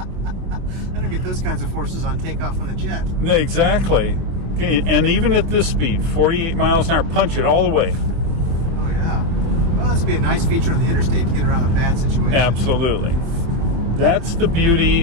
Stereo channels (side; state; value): left; late; 25 ms